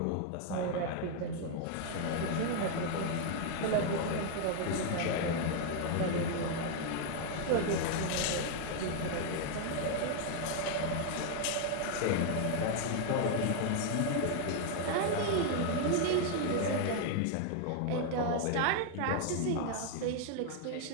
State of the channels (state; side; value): different; both; correlation 0.00